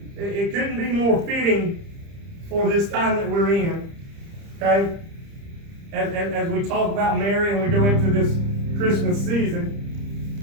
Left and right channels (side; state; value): left; late; 30 ms